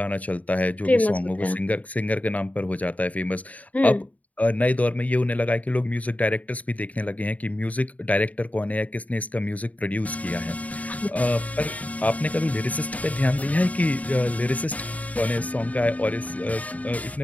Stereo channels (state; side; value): late; right; 0.071 ms